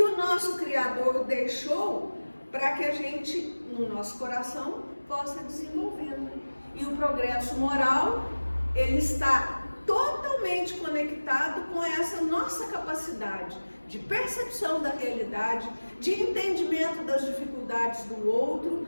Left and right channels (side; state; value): both; inverted; correlation -1.00